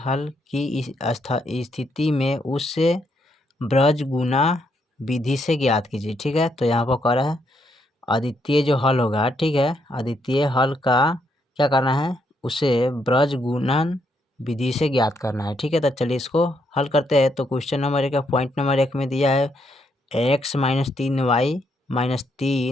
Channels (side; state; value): both; normal; correlation 0.76